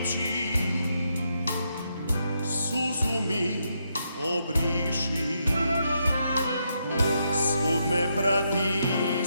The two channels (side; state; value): both; inverted; correlation -0.80